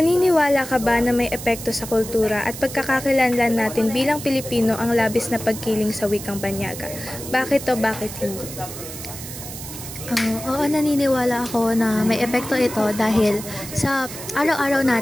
ka ba na may epekto sa kultura at pagkakakilanlan natin bilang Pilipino ang labis na pagkiling sa wikang banyaga? Bakit o bakit hindi? Oo, naniniwala ako na may epekto ito dahil sa araw-araw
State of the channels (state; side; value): noise; right; hiss, 11 dB below the sound